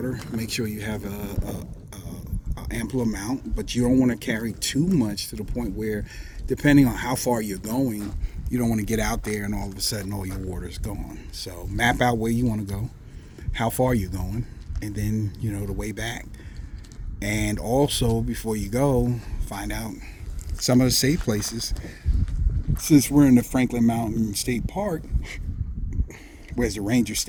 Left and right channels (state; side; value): identical; both; correlation 1.00